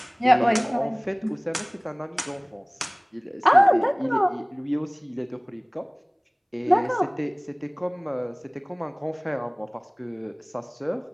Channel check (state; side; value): identical; both; correlation 1.00